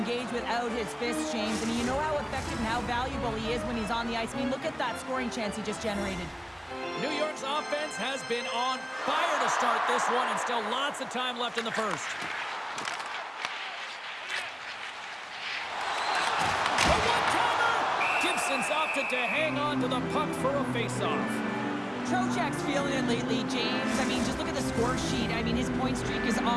without his fists, James. I mean, you know how effective and how valuable he is when he's on the ice. I mean, look at that scoring chance he just generated. New York's offense has been on fire to start this one, and still lots of time left in the first. A one-timer! Gibson's opted to hang on to the puck for a face-off. Trocheck's feeling it lately, James. I mean, just look at the score sheet. I mean, his point streak is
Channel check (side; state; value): both; identical; correlation 1.00